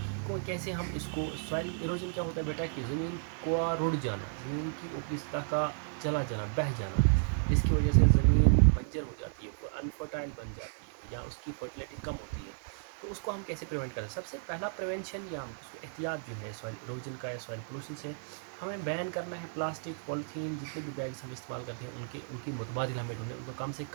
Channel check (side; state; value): left; silent; digital silence